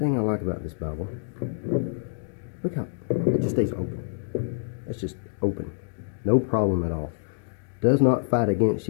I like about this Bible, look how it just stays open. It's just open. No problem at all. Does not fight against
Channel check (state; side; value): silent; right; digital silence